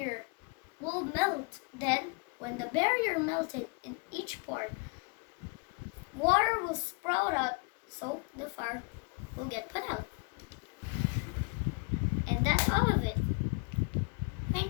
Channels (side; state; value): right; quieter; 32.0 dB